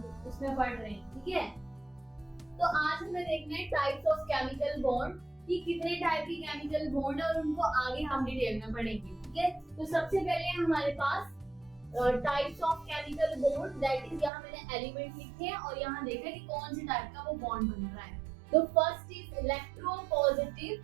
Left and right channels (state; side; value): drops out; left; at 14.3 s